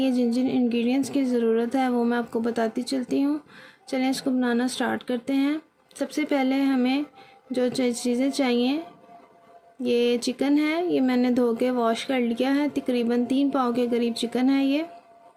जिन जिन इंग्रेडिएंट्स की ज़रूरत है वो मैं आपको बताती चलती हूँ। चलें इसको बनाना स्टार्ट करते हैं। सबसे पहले हमें जो चीज़ें चाहिए, ये चिकन है, ये मैंने धो के वॉश कर लिया है। तकरीबन 3 पाव के करीब चिकन है ये।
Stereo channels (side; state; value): both; identical; correlation 1.00